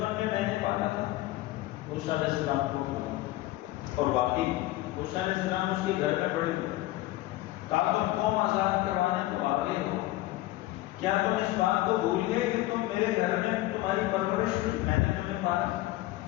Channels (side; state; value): right; quieter; 17.3 dB